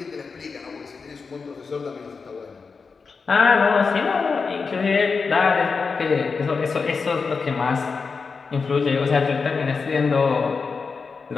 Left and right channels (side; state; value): right; quieter; 4.9 dB